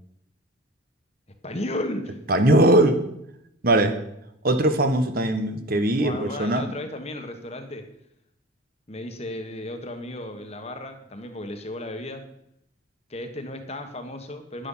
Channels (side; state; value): both; normal; correlation 0.34